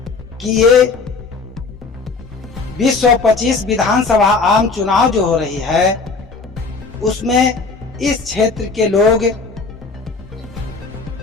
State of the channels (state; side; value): quieter; right; 4.3 dB